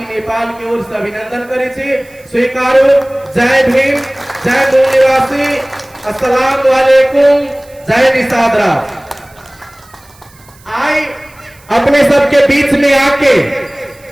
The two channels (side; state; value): right; noise; hiss, 27 dB below the sound